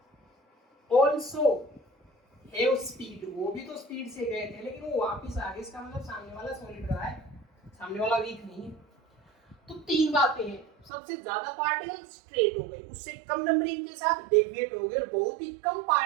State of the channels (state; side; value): drops out; left; at 10.9 s